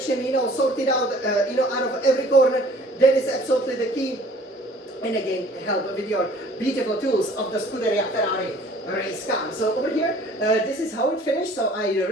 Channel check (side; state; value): both; normal; correlation 0.52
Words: you know, sorted out, you know, out of every corner. That is absolutely the key. And again, help with your beautiful tools of the Scuderia Ferrari race car. So over here, this is how it finished. So I